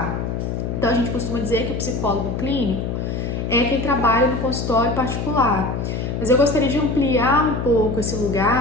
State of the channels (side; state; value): left; noise; hum, 3 dB below the sound